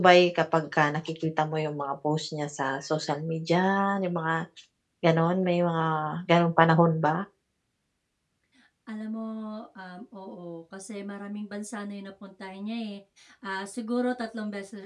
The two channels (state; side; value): identical; both; correlation 1.00